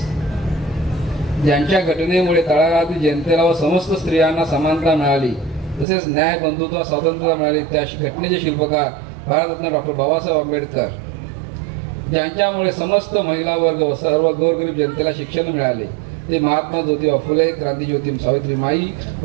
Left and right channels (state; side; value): drops out; left; at 5.9 s